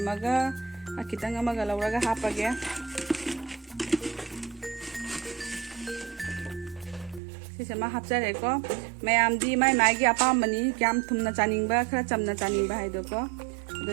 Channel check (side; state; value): left; drops out; at 7.2 s